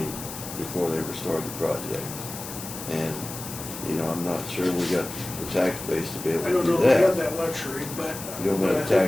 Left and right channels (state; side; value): noise; left; hiss, 10 dB below the sound